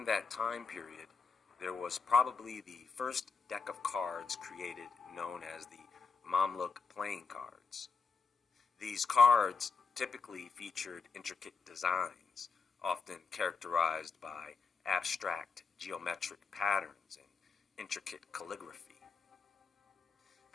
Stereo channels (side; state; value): right; quieter; 5.1 dB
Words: that time period, there was probably the first deck of cards created known as the Mamluk playing cards. These cards typically featured intricate designs, often characterized by abstract geometric patterns and intricate calligraphy.